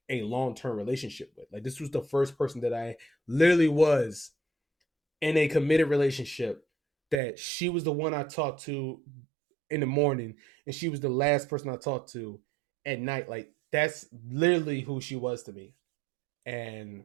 a long term relationship with. Like this was the first person that I literally was in a committed relationship, that she was the one I talked to in the morning and she was the last person I talked to at night. Like that's literally who she was to me. And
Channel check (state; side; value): drops out; left; at 7.2 s